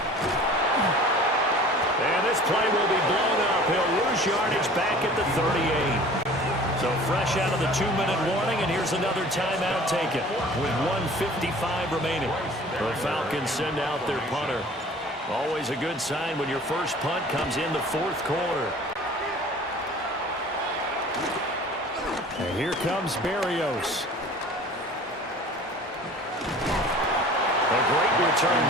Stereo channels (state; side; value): normal; both; correlation 0.46